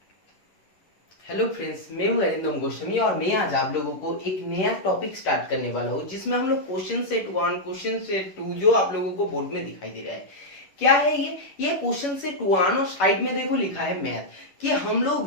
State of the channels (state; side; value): late; right; 11 ms